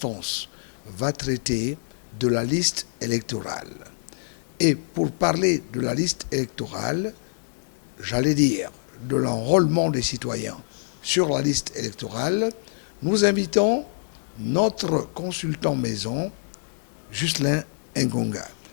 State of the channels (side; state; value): right; silent; digital silence